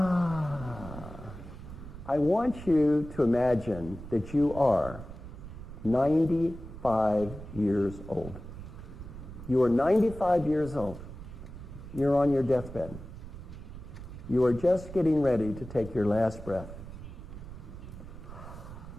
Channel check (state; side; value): noise; right; rumble, 13 dB below the sound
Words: I want you to imagine that you are 95 years old. You are 95 years old. You're on your deathbed. You are just getting ready to take your last breath.